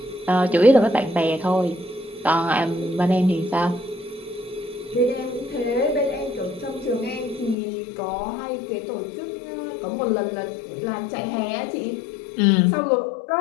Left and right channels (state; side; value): drops out; right; at 7.6 s